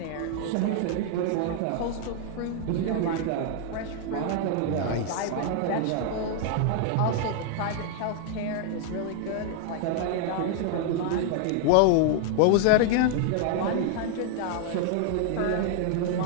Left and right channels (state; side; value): different; both; correlation 0.00